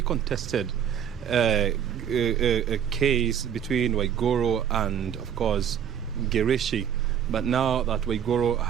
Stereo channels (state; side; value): quieter; left; 8.9 dB